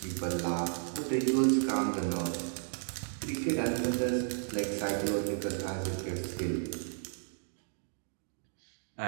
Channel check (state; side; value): silent; left; digital silence